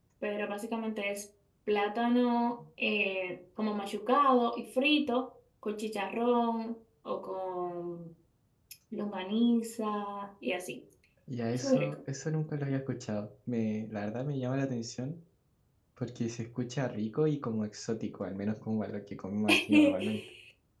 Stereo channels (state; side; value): identical; both; correlation 1.00